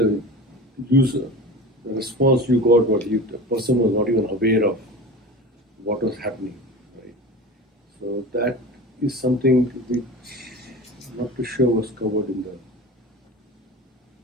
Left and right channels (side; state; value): both; normal; correlation 0.32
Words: user, the response you got, the person was not even aware of what was happening, right? So that is something which not too sure was covered in the.